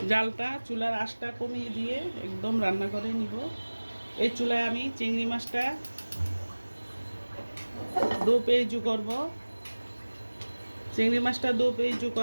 জালটা চুলার আঁচটা কমিয়ে দিয়ে একদম রান্না করে নিব। এই চুলায় আমি চিংড়ি মাছটা দো পেঁয়াজু করব। চিংড়ি মাছটা দো পেঁয়াজু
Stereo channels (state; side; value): inverted; both; correlation -1.00